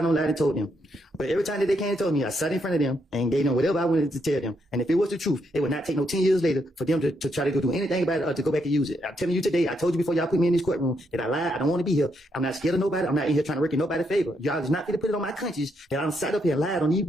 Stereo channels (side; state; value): both; normal; correlation 0.77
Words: don't lie and told them. But every time that they came and told me, I sat in front of them and gave them whatever I wanted to tell them. And if it was the truth, it would not take no 10 years later for them to try to do anything about it or to go back and use it. I'm telling you today, I told you before y'all put me in this courtroom that I lied. I don't want to be here. I'm not scared of nobody. I'm not in here trying to work in nobody's favor. Y'all is not going to put it on my conscience that I'm sat up here and lied on these